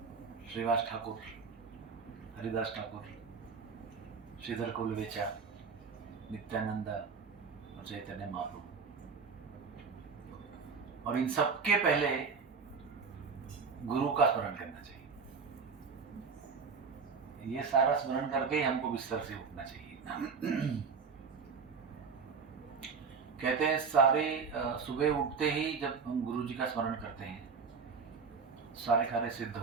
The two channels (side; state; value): left; quieter; 5.3 dB